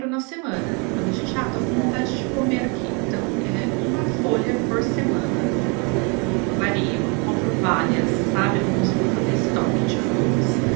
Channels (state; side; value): quieter; left; 32.9 dB